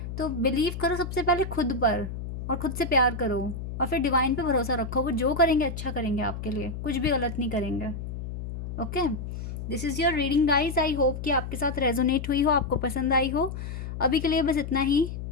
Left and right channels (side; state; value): left; noise; hum, 7 dB below the sound